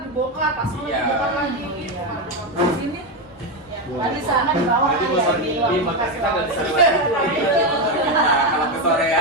dibongkar, pas Iya. dibongkar lagi gitu. Di sini Tadi sana di bawah Jadi ya, bosan di Di ruang podcast kita nggak bisa kelas. lewat situ. Nah, kalau ke sore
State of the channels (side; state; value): both; normal; correlation 0.10